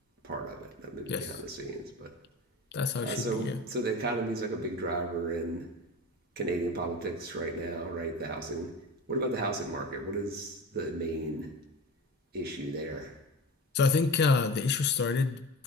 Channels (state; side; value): normal; both; correlation 0.32